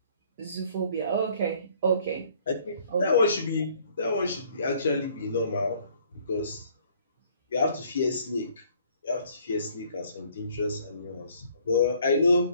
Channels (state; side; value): inverted; both; correlation -0.60